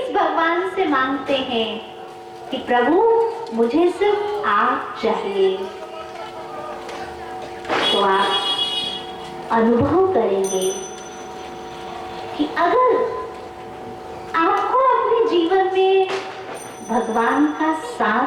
भगवान से मांगते हैं कि प्रभु मुझे सिर्फ आप चाहिए, तो आप अनुभव करेंगे कि अगर आपको अपने जीवन में भगवान का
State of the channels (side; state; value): both; identical; correlation 1.00